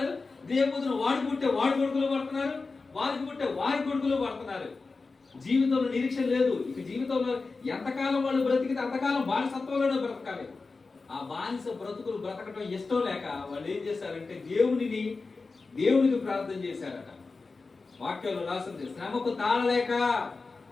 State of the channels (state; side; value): quieter; right; 4.0 dB